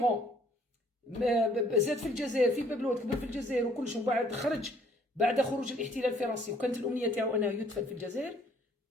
زاد في الجزائر في بابلود كبر في الجزائر وكلش، ومن بعد خرج بعد خروج الاحتلال الفرنسي وكانت الأمنية تاعو أنه يدخل في الجزائر،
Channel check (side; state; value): both; normal; correlation 0.61